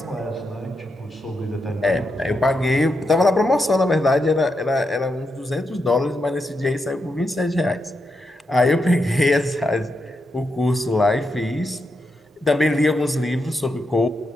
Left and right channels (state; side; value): normal; both; correlation 0.84